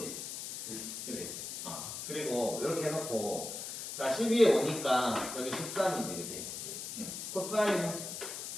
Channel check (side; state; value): left; noise; hiss, 6 dB below the sound